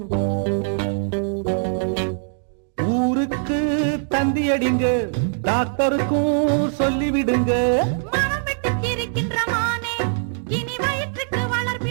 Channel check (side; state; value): left; silent; digital silence